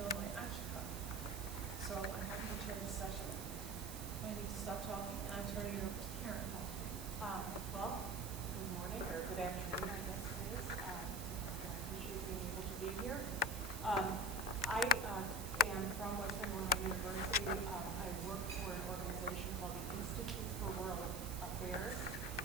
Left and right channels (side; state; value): right; noise; hiss, 9 dB below the sound